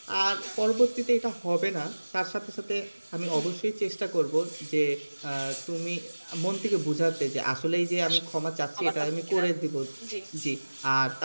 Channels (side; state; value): both; inverted; correlation -1.00